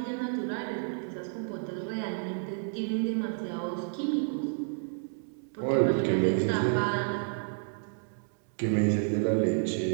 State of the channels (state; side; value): silent; left; digital silence